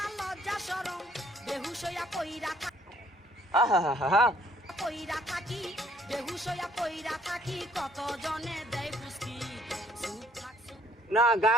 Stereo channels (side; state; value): both; normal; correlation 0.63